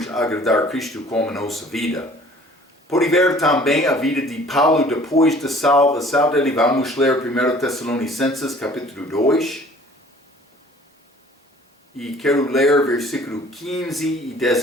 agradar Cristo com a nossa vida. Pode ver também a vida de Paulo depois da salvação dele. Vamos ler 1 Tessalonicenses capítulo 2. E quero ler versículo 15 e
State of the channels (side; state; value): both; normal; correlation 0.51